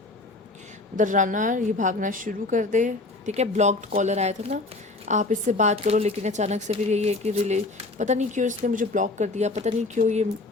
द रनर, ये भागना शुरू कर दे, ठीक है। ब्लॉक्ड कॉलर आया था ना, आप इससे बात करो लेकिन अचानक से फिर यही है कि पता नहीं क्यों इसने मुझे ब्लॉक कर दिया, पता नहीं क्यों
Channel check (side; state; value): right; quieter; 3.2 dB